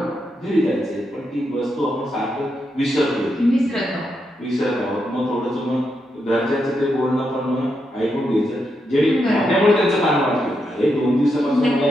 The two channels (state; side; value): normal; both; correlation 0.83